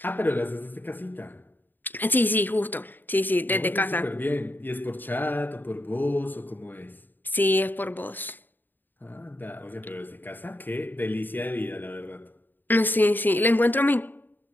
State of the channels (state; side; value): late; right; 0.091 ms